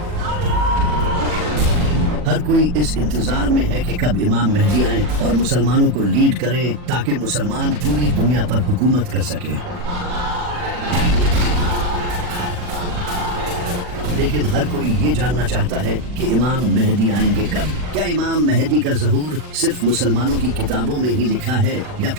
ہر کوئی اس انتظار میں ہے کہ کب امام مہدی آئیں اور مسلمانوں کو لیڈ کریں تاکہ مسلمان پوری دنیا پر حکومت کر سکیں۔ لیکن ہر کوئی یہ جاننا چاہتا ہے کہ امام مہدی آئیں گے کب؟ کیا امام مہدی کا ظہور صرف مسلمانوں کی کتابوں میں ہی لکھا ہے یا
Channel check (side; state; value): left; late; 40 ms